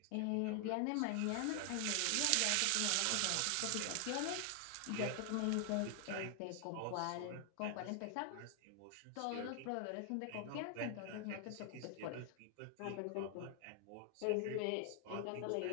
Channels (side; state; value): both; different; correlation 0.00